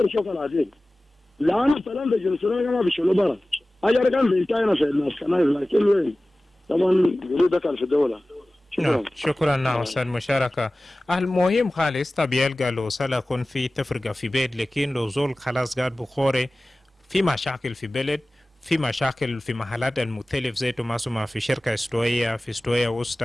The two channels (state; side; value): normal; both; correlation 0.97